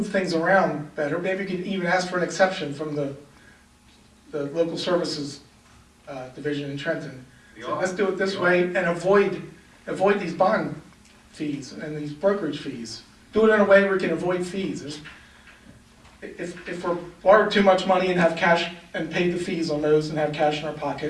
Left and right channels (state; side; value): identical; both; correlation 1.00